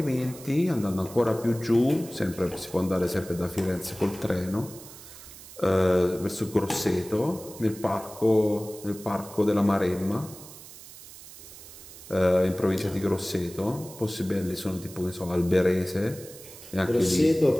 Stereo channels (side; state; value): right; noise; hiss, 17 dB below the sound